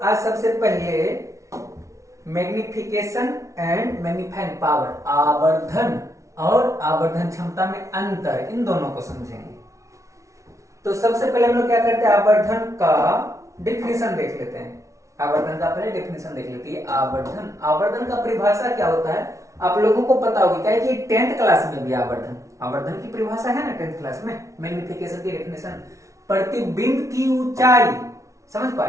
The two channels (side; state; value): left; late; 0.15 ms